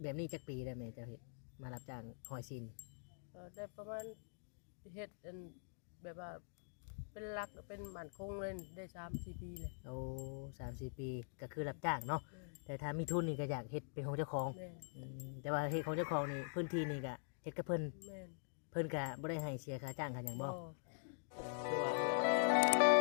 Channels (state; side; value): silent; right; digital silence